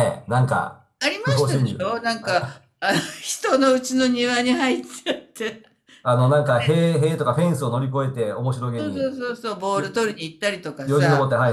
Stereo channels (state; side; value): identical; both; correlation 1.00